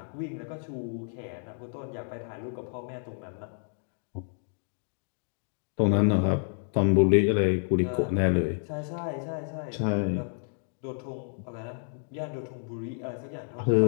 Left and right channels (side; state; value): right; silent; digital silence